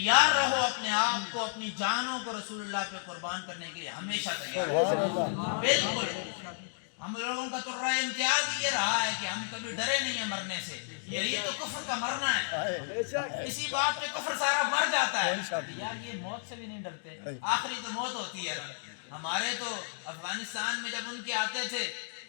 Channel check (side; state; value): right; silent; digital silence